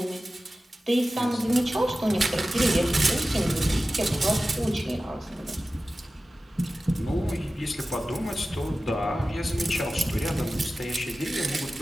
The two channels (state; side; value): normal; both; correlation 0.95